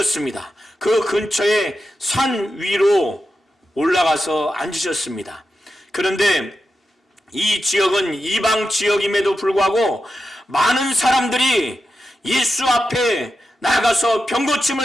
그 근처에 산 위로 올라가서 앉으셨습니다. 그런데 이 지역은 이방 지역임에도 불구하고 많은 사람들이 예수 앞에 나가서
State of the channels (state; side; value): normal; both; correlation 0.89